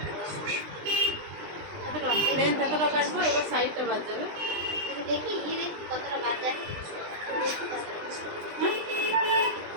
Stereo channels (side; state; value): left; late; 20 ms